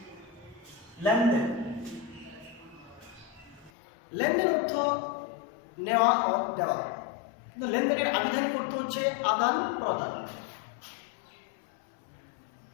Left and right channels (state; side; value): drops out; right; at 3.7 s